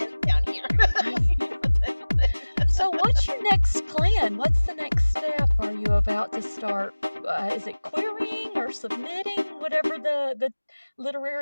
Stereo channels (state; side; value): inverted; both; correlation -1.00